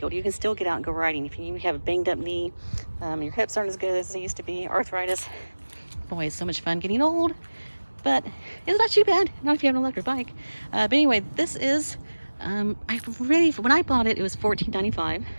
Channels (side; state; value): both; inverted; correlation -1.00